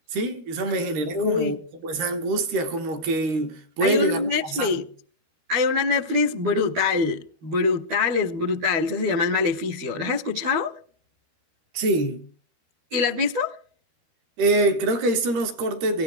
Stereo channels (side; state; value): left; late; 13 ms